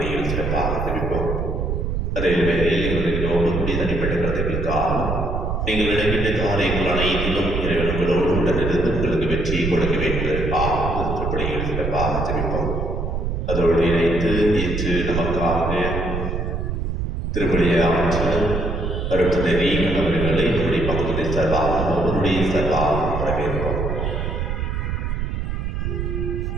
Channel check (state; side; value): noise; right; rumble, 2 dB below the sound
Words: சிறப்பாக ஜெபிப்போம். அதே வேளையில் இவர்களோடு கூடிய தனிப்பட்ட கருத்துக்களுக்காக நீங்கள் இடைப்பட்ட காரியங்கள் அனைத்திலும் இறைவன் உங்களோடு உடனிருந்து உங்களுக்கு வெற்றியை கொடுக்க வேண்டும் என்பதற்காக திருப்பணியில் சிறப்பாக ஜெபிப்போம். அதோடு இணைத்து இன்று நமக்காக திருப்பணியை ஆற்றல் அருட்தந்தை ரீகன் அவர்களை நம்முடைய பக்கத்துடைய சார்பாக அவருடைய சார்பாக வரவேற்போம்.